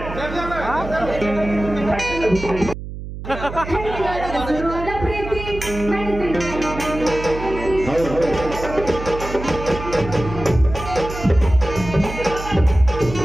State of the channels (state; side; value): noise; right; hum, 9 dB below the sound